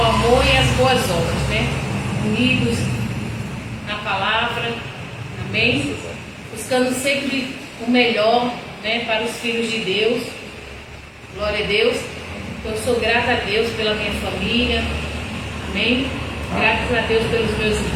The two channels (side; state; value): both; identical; correlation 1.00